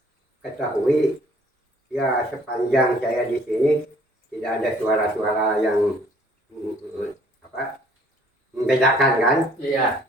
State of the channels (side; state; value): both; normal; correlation 0.58